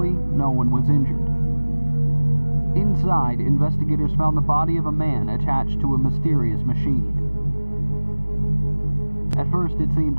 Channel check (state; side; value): inverted; both; correlation -1.00